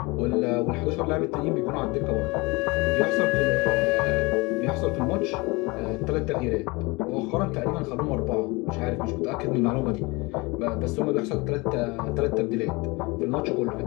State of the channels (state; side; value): quieter; right; 25.3 dB